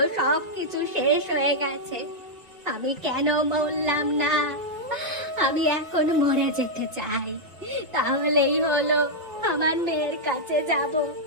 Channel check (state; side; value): late; left; 2.7 ms